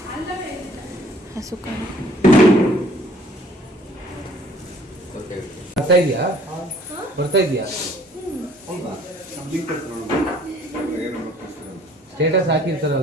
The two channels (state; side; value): normal; both; correlation 0.58